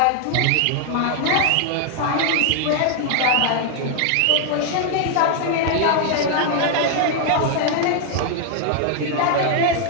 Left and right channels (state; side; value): different; both; correlation 0.00